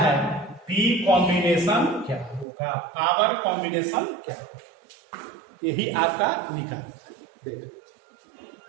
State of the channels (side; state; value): left; drops out; at 2.5 s